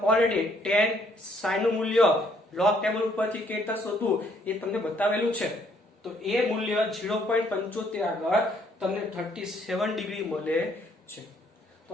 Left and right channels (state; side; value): normal; both; correlation 0.66